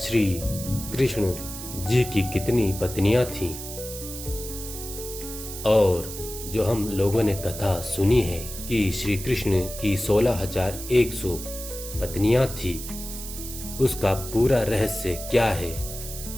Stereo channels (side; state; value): right; noise; hiss, 10 dB below the sound